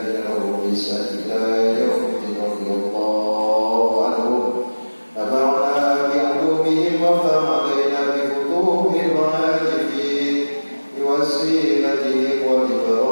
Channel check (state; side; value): inverted; both; correlation -1.00